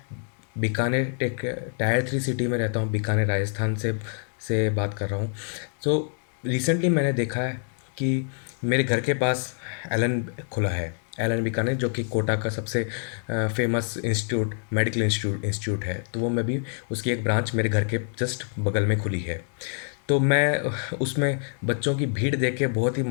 बीकानेर एक टायर 3 सिटी में रहता हूं। बीकानेर राजस्थान से बात कर रहा हूं। तो रिसेंटली मैंने देखा है कि मेरे घर के पास एलन खुला है। एलन बीकानेर, जो कि कोटा का सबसे फेमस इंस्टीट्यूट, मेडिकल इंस्टीट्यूट है। तो वो मैं भी उसकी एक ब्रांच मेरे घर के जस्ट बगल में खुली है। तो मैं उसमें बच्चों की भीड़ देख के बहुत ही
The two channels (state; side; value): silent; right; 58 dB below the other